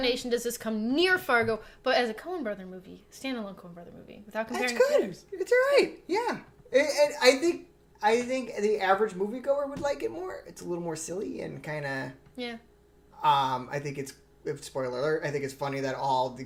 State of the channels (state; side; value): identical; both; correlation 1.00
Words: does this come near Fargo, but as a Coen Brother movie, standalone Coen Brother movie, without comparing. That's good. It's all right. Yeah. And I think the average moviegoer would like it more. It's a little more silly and kind of... Yeah. I think it's... Spoiler alert, I think it's funny that all the